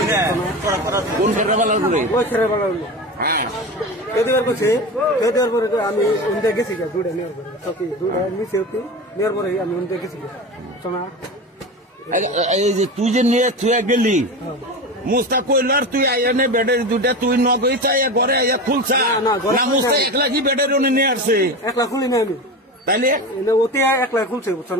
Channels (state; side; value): normal; both; correlation 0.26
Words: কোন ছেড়ে বালার ওই ছেড়ে বালার দেওয়ার করছে দেওয়ার পরে আমি উনতে গেছি দুটা নেওয়ার পরে সত্যি দুটা নিচে নেওয়ার পরে আমি উনতে গেছি শোনা এই যে তুই যে নিয়ে তুই গেলি মুস্তা কইল আর তুই আইয়া নে ব্যাটারি দুটা তুই নগই চাই ঘরে আইয়া খুলছা না মুস্তা একলা কি ব্যাটারি নিয়ে আসছে একলা খুলি না আমি তাইলে ওতে একলা খুলছে বুঝছো